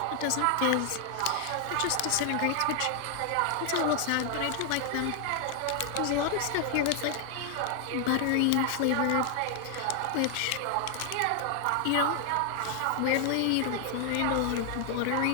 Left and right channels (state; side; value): different; both; correlation 0.00